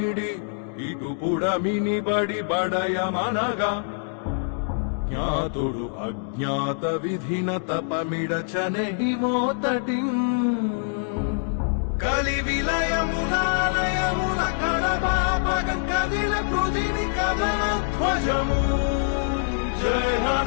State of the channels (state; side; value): silent; right; digital silence